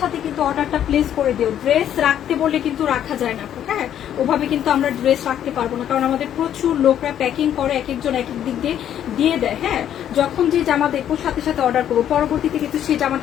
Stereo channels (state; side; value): quieter; right; 10.3 dB